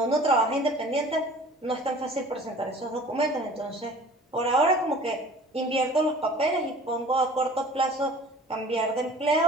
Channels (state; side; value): normal; both; correlation 0.47